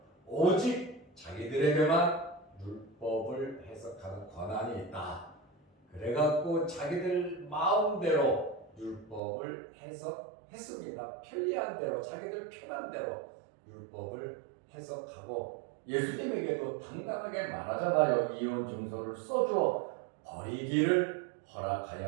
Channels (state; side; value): drops out; left; at 9.2 s